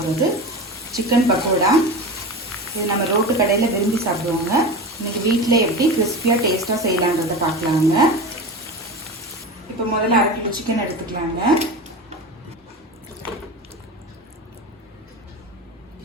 சிக்கன் பக்கோடா. இது நம்ம ரோட்டு கடையில் விரும்பி சாப்பிடுவோங்க. இன்னைக்கு வீட்டில் எப்படி கிறிஸ்பியாக டேஸ்ட்டாக செய்யலான்றதை பார்க்கலாங்க. இப்போ முதல்ல 1/2 கிலோ சிக்கன் எடுத்துக்கலாங்க.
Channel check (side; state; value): both; normal; correlation 0.27